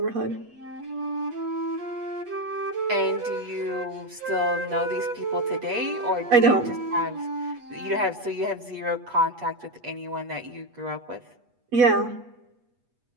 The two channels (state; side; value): late; left; 8.3 ms